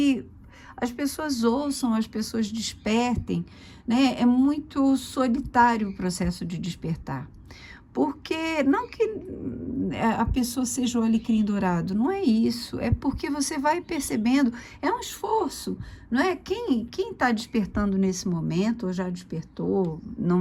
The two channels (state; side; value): identical; both; correlation 1.00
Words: as pessoas ouçam, as pessoas despertem, né? É muito solitário o processo de despertar. Porque, não que a pessoa seja o alecrim dourado, não é isso, é porque você vai percebendo, é um esforço, não é? Quem está despertando nesse momento, ou já despertou,